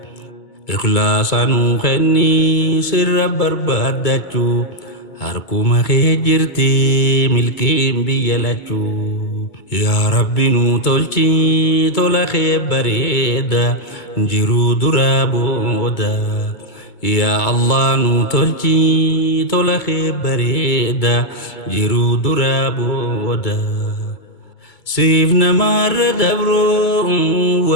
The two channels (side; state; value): right; late; 2.2 ms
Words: ikhlaasa nuu kennii sirra barbaadachuu harkuma kee jirti milkiin biyya lachuu. Yaa Rabbi nuu tolchi tola kee bareeda jiruu duraa booda. Yaa Allah nuu tolchi tola kee bareeda jiruu duraa booda. Siif namarra dabroo